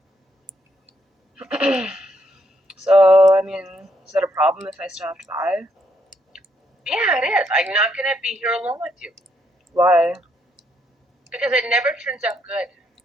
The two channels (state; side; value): normal; both; correlation 0.74